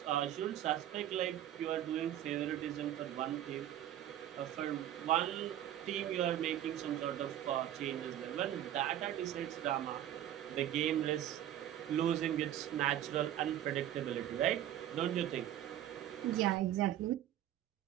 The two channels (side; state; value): left; quieter; 11.9 dB